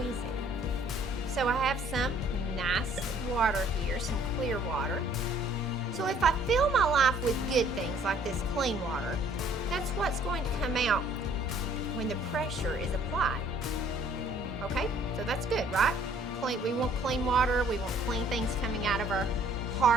it. So I have some nice water here, some clear water. So if I fill my life with good things like this clean water, that's what's going to come out when the pressure is applied. Okay, so that's good, right? We want clean water, we want clean things coming out of our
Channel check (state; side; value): normal; both; correlation 0.59